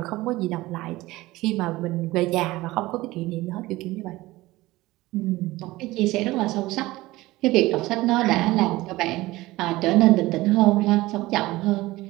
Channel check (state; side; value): quieter; left; 18.8 dB